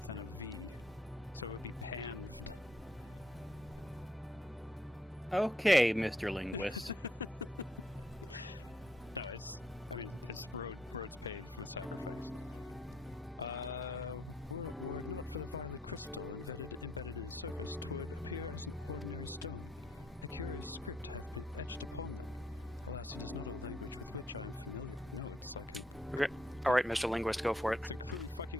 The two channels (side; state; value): both; normal; correlation 0.73